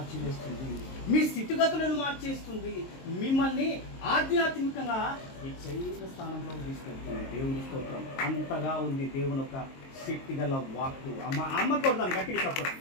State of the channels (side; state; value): right; late; 22 ms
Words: మీ స్థితిగతులను మార్చేస్తుంది, మిమ్మల్ని ఆధ్యాత్మికంగా హెచ్చైన స్థానంలో తీసుకెళ్తుంది. దేవుని స్తోత్రం. అంతగా ఉంది దేవుని ఒక శక్తి గల వాక్కు. అమ్మ కొడదాను గట్టిగా చెప్పండి.